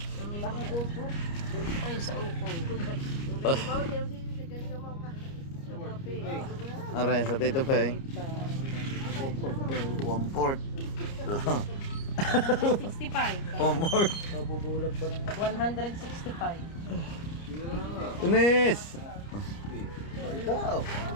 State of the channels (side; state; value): right; late; 29 ms